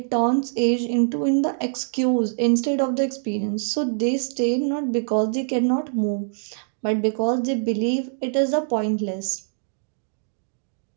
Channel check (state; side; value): silent; left; digital silence